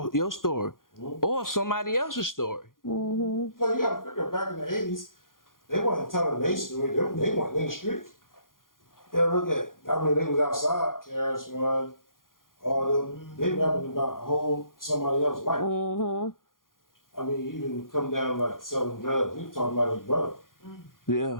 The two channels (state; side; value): late; right; 0.90 ms